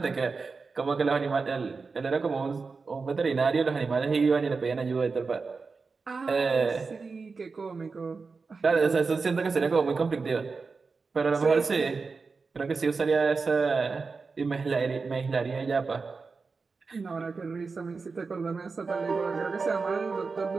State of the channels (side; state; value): left; quieter; 4.5 dB